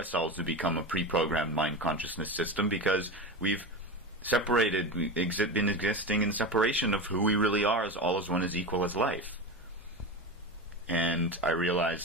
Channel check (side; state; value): both; normal; correlation 0.23